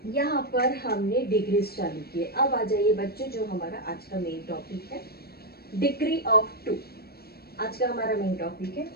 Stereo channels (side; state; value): right; late; 0.45 ms